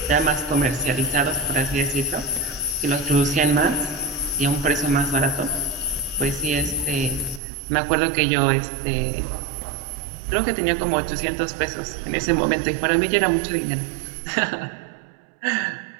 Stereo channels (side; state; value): left; drops out; at 7.4 s